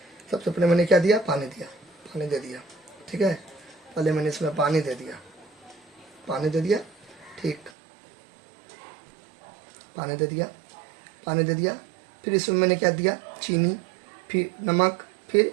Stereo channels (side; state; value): left; drops out; at 7.7 s